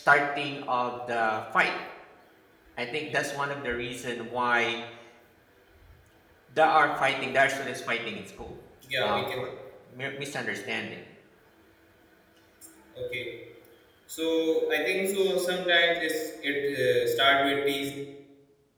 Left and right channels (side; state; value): both; identical; correlation 1.00